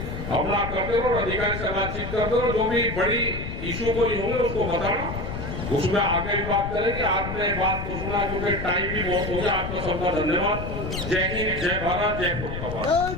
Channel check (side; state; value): left; noise; rumble, 6 dB below the sound